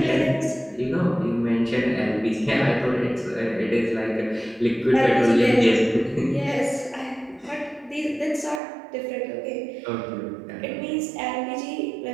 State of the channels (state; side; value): drops out; left; at 8.6 s